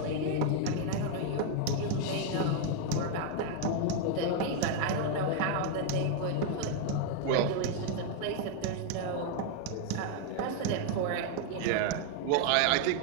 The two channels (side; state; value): both; different; correlation 0.00